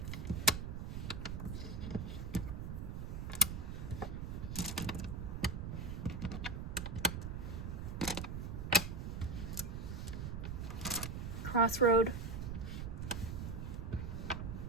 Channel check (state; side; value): noise; right; rumble, 4 dB below the sound